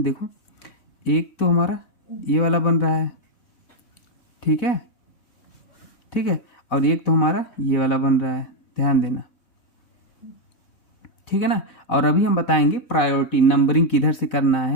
देखो एक तो हमारा ये वाला बन रहा है, ठीक है, ठीक है, और एक तो हमारा ये वाला बन रहा है, ध्यान देना, ठीक है ना। और अभी हम बताएंगे प्रायोरिटी नंबरिंग किधर से करना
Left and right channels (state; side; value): late; right; 4.0 ms